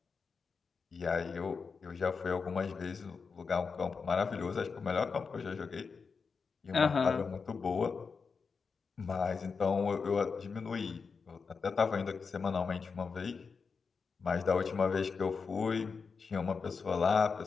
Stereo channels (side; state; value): right; quieter; 5.2 dB